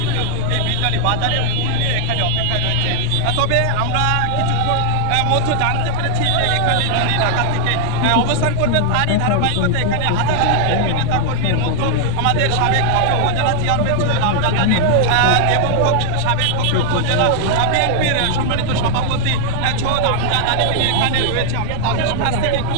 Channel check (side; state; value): both; different; correlation -0.01